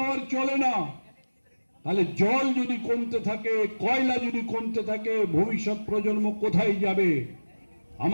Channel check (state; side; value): inverted; both; correlation -1.00